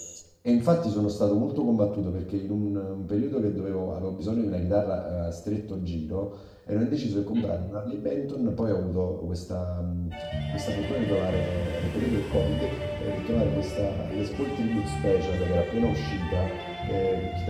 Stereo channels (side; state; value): both; identical; correlation 1.00